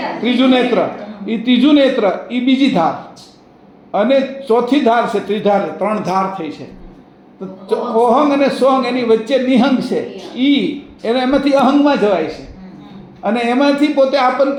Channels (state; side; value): identical; both; correlation 1.00